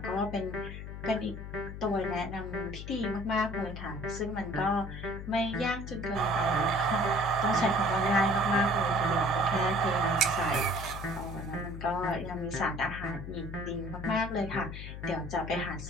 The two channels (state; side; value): noise; left; hum, 9 dB below the sound